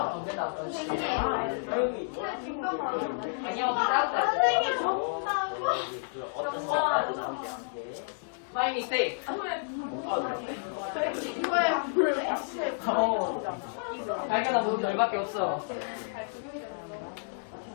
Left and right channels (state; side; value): silent; right; digital silence